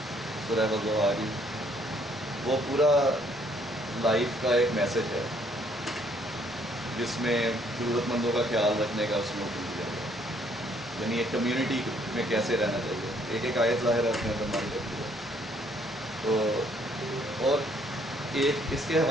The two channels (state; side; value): normal; both; correlation 0.65